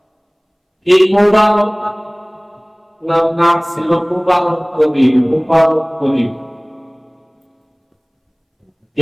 এই মুবারক নাম ছিল মুবারক কবির। মুবারক কবির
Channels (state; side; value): identical; both; correlation 1.00